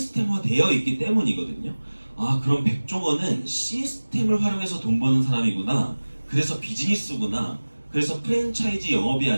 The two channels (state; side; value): inverted; both; correlation -1.00